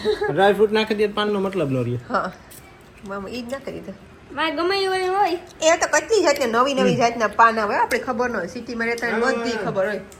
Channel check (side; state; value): both; identical; correlation 1.00